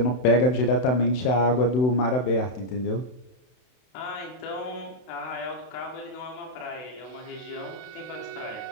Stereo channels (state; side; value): late; right; 32 ms